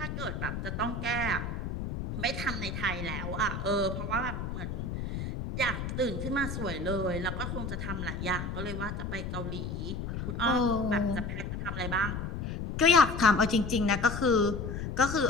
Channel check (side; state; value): left; noise; rumble, 4 dB below the sound